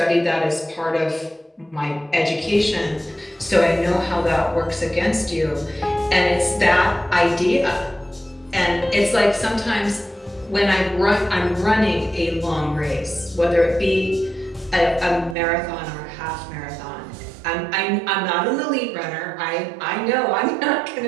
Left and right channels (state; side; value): drops out; left; at 15.4 s